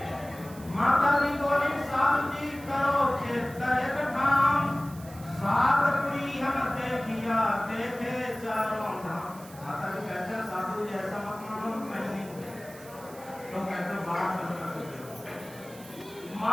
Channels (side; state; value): right; noise; hiss, 20 dB below the sound